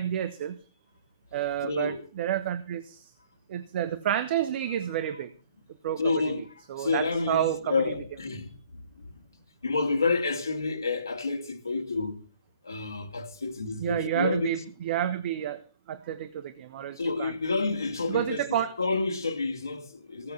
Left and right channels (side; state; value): both; inverted; correlation -0.60